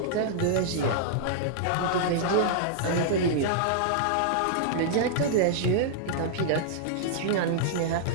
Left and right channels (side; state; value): both; different; correlation -0.01